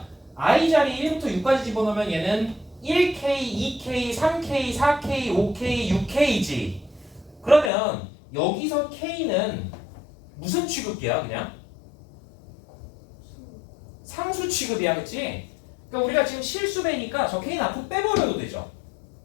I 자리에 1부터 6까지 집어넣으면 얘는 1K, 2K, 3K, 4K, 5K, 6K지. 그러면 여기서 K는 무슨 취급이야 그냥? 상수 취급이야. 그치? 그러니까 우리가 지금 실수배니까 저 K는 앞으로 빼버려도 되죠.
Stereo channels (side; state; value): right; drops out; at 7.7 s